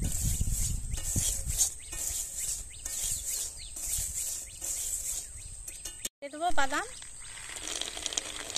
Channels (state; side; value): identical; both; correlation 1.00